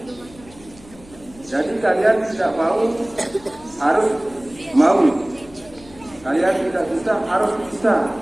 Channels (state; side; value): noise; left; hum, 23 dB below the sound